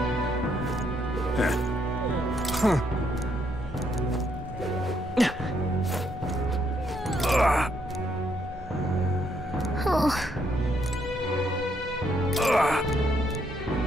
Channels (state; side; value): normal; both; correlation 0.73